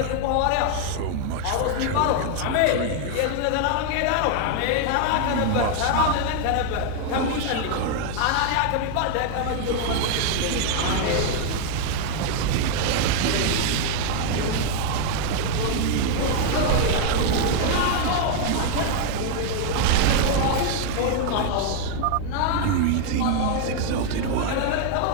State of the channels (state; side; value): different; both; correlation 0.00